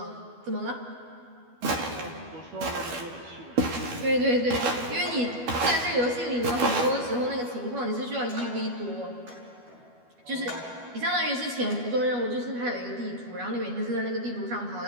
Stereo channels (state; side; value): late; left; 12 ms